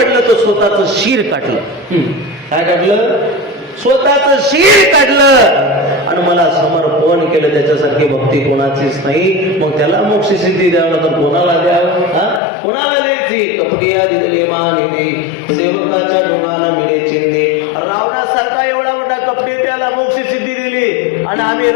तर स्वतःच शिर काढलं. काय काढलं? स्वतःच शिर काढलं आणि मला समर्पण केलं. त्याच्यासारखी भक्ती कोणाचीच नाही. मग त्याला मोक्ष सिद्धी द्यावं तर कोणाला द्यावं? कोणाला द्यायची? कपटिया दिले मानिली, सेवकाच्या डोंगाना मिळे चिंदे. रावणासारखा एवढा मोठा कपटे त्याला मोक्ष सिद्धी दिली आणि आम्ही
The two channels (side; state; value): right; drops out; at 12.4 s